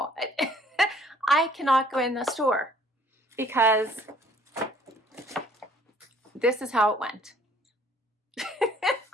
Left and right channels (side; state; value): both; normal; correlation 0.58